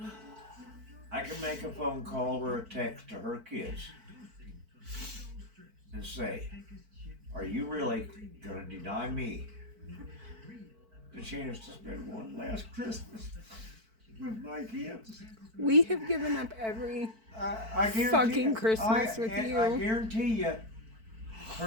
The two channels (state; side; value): late; left; 4.5 ms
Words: I can make a phone call or a text to her kids and say, "Are you really gonna deny me the chance to spend one last Christmas with my kids?" We have given up every I guarantee fucking you, Christmas with and you. I guarantee you,